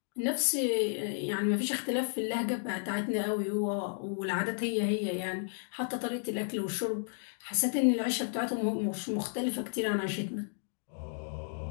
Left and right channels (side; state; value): right; silent; digital silence